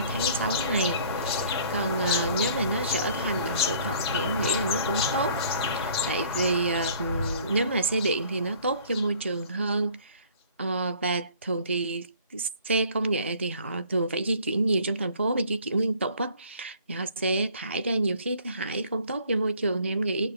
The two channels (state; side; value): inverted; both; correlation -0.54